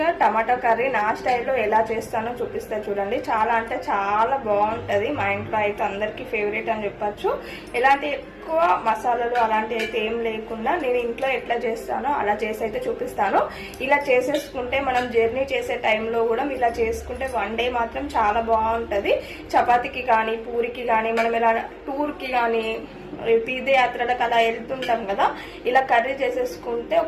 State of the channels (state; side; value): identical; both; correlation 1.00